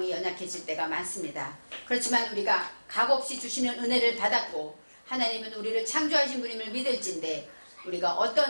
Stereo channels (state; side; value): inverted; both; correlation -1.00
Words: 연약해질 때가 많습니다. 그렇지만 우리가 값없이 주시는 은혜를 받았고 하나님은 우리를 창조하신 분임을 믿을진데 우리가